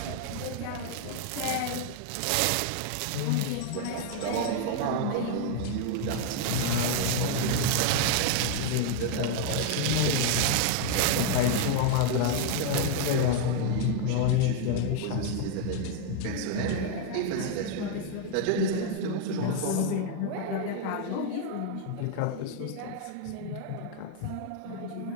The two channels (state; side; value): different; both; correlation 0.00